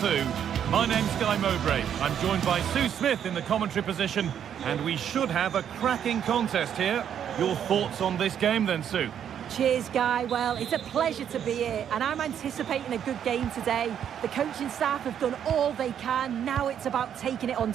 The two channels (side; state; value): left; quieter; 9.1 dB